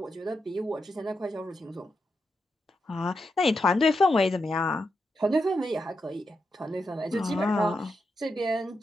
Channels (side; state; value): both; normal; correlation 0.85